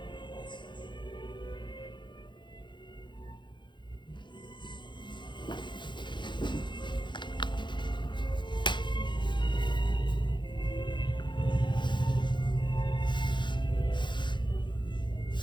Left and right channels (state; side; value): late; right; 0.23 ms